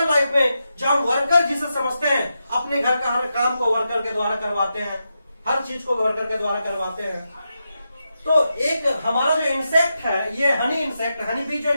लाइफ में जो हम वर्कर जिसे समझते हैं, अपने घर का हर काम को वर्कर के द्वारा करवाते हैं, हर चीज को वर्कर के द्वारा करवाते हैं। तो एक हमारा जो इंसेक्ट है, ये हनी इंसेक्ट, हनी बी जो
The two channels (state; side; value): inverted; both; correlation -0.87